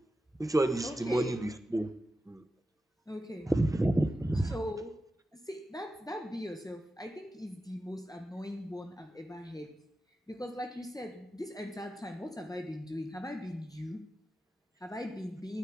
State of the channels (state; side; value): normal; both; correlation 0.91